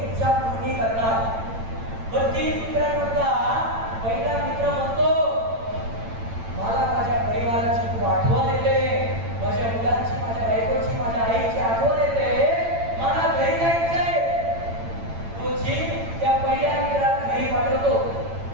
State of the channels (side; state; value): left; late; 8.9 ms